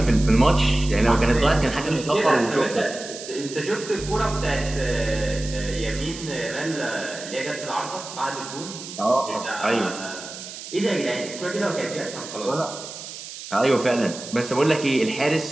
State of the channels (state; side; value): noise; right; hiss, 11 dB below the sound